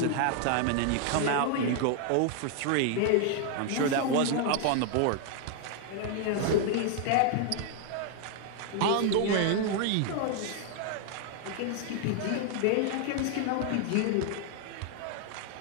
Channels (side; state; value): both; different; correlation 0.00